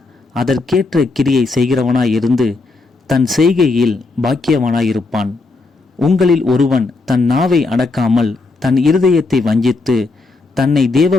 அதற்கேற்ற கிரியை செய்கிறவனாயிருந்து தன் செய்கையில் பாக்கியவனாயிருப்பான். உங்களில் ஒருவன் தன் நாவை அடக்காமல் தன் இருதயத்தை வஞ்சித்து தன்னை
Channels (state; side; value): quieter; right; 3.7 dB